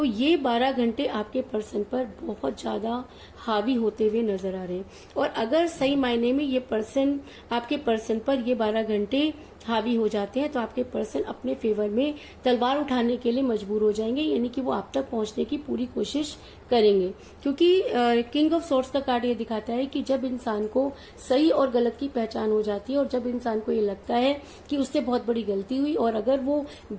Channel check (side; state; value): both; identical; correlation 1.00